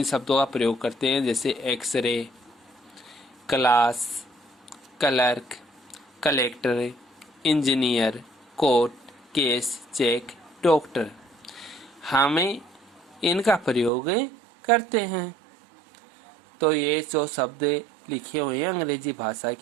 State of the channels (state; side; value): drops out; left; at 13.9 s